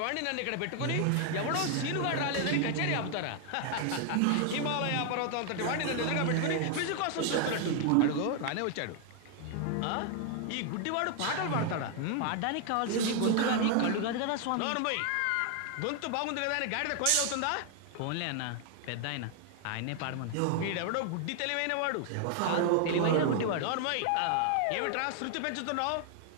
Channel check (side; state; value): both; different; correlation 0.00